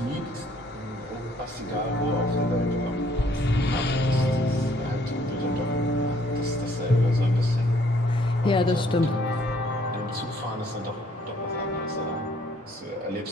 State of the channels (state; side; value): normal; both; correlation 0.63